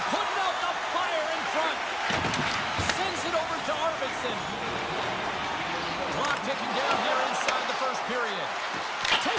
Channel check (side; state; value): both; identical; correlation 1.00